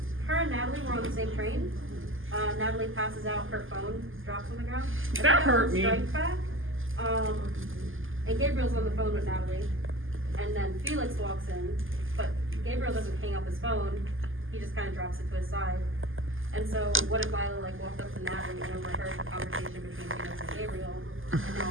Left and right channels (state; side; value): late; left; 0.59 ms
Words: Her and Natalie were on the same train. Natalie passes out, her phone drops on the ground. That hurt me. Strikes back. And Gabriel's on the phone with Natalie. And then Felix walks in, but Gabriel doesn't hang up his phone. He just kind of drops it to his side. And so, what if Lila like walked up to Natalie and overheard the conversation between Felix and Gabriel? And